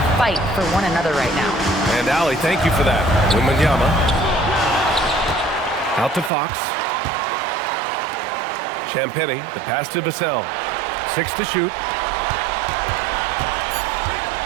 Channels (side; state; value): left; drops out; at 6.3 s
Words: fight for one another right now." And Allie, thank you for that. Wembanyama. Out to Fox. Champagnie, the pass to Vassell. 6 to shoot.